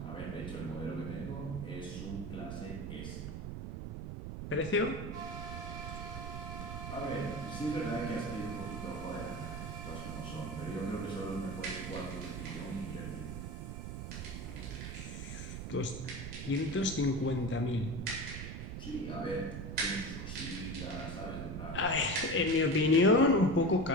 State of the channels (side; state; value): right; noise; rumble, 6 dB below the sound